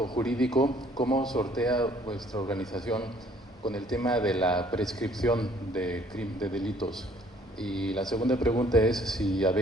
jurídico, ¿cómo sortea vuestra organización con el tema de la prescripción de delitos? Y la segunda pregunta es si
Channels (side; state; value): both; normal; correlation 0.60